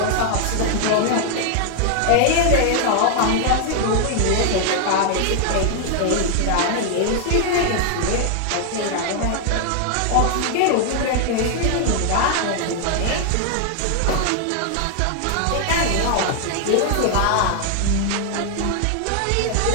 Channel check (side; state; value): both; different; correlation 0.00